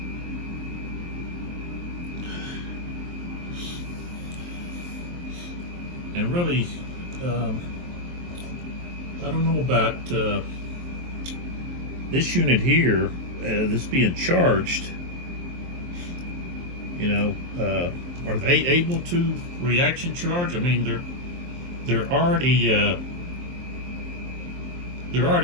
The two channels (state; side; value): late; left; 23 ms